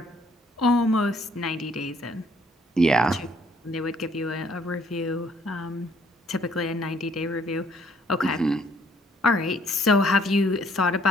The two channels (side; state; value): both; normal; correlation 0.64